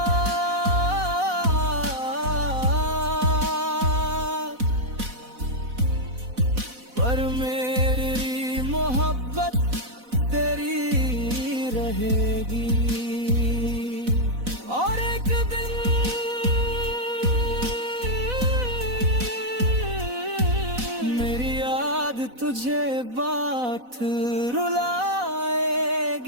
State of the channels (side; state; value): left; late; 4.1 ms